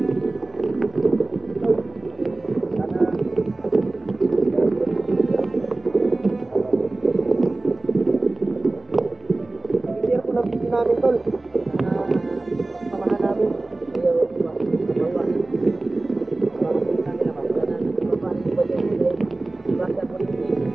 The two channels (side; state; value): left; quieter; 3.1 dB